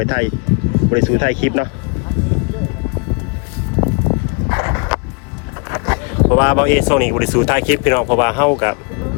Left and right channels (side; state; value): right; quieter; 34.6 dB